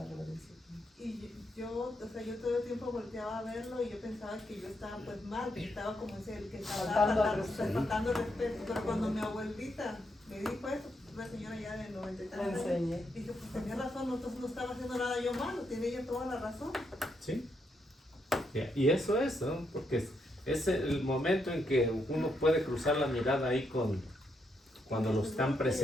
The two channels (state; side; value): normal; both; correlation 0.79